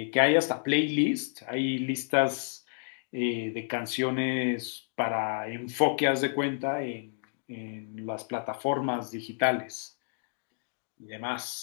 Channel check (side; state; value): right; silent; digital silence